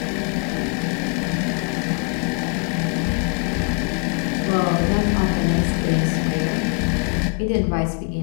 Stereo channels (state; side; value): quieter; right; 37.1 dB